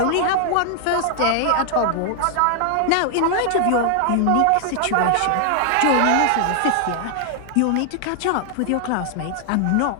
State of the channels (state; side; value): different; both; correlation 0.00